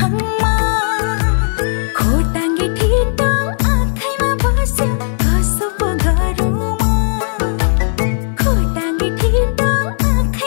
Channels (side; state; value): right; silent; digital silence